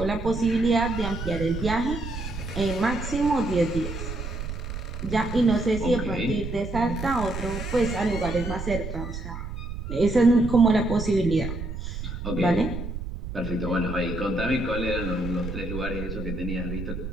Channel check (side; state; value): right; noise; rumble, 7 dB below the sound